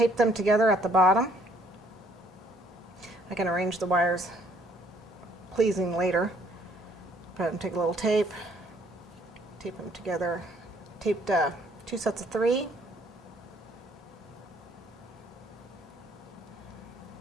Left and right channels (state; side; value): normal; both; correlation 0.63